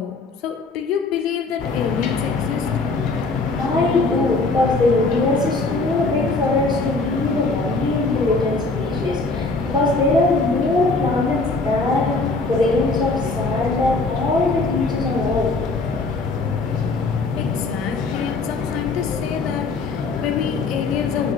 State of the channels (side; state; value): right; quieter; 3.6 dB